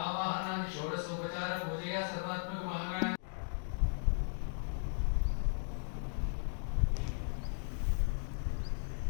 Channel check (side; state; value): right; silent; digital silence